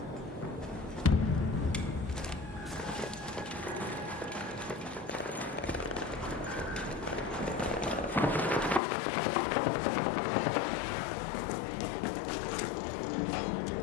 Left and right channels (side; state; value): right; drops out; at 8.8 s